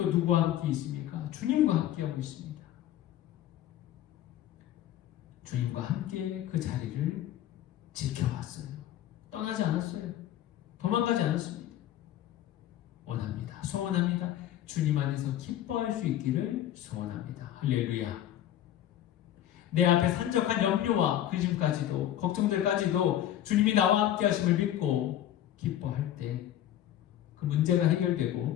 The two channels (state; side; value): quieter; right; 12.0 dB